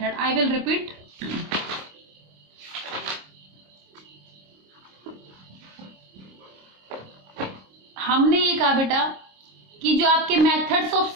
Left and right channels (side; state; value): left; late; 26 ms